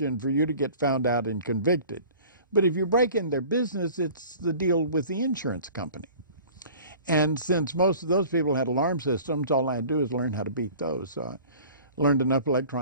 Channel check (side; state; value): both; inverted; correlation -0.45